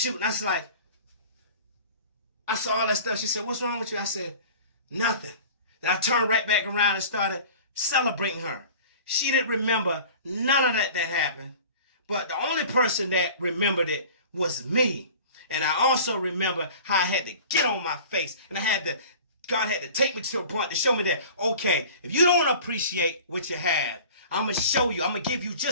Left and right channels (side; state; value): both; inverted; correlation -0.42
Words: I was like, I saw all that stuff. She said, what's wrong with you? I said, nothing. Then I turned right back around and started celebrating her. She didn't remember none of that happened. But the only person that remembered it was me. And I also remember how I had to get on my face. And God had to take me to a point to show me that, okay, if you don't appreciate what you have, I'm going to show you. I'm going to give you